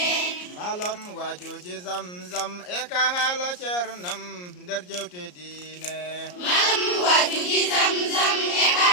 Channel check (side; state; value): right; late; 34 ms